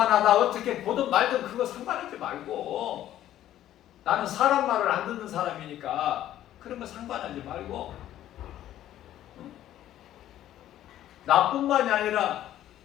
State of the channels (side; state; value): right; quieter; 12.5 dB